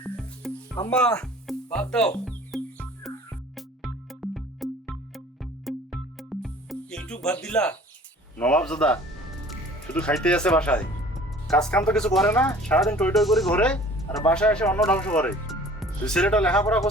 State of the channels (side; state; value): both; normal; correlation 0.48